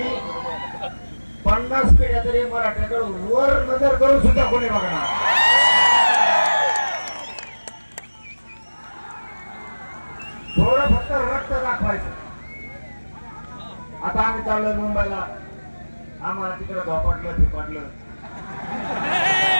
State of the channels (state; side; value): inverted; both; correlation -1.00